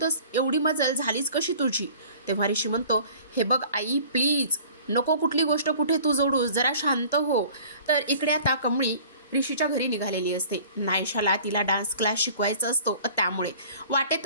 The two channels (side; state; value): both; inverted; correlation -0.47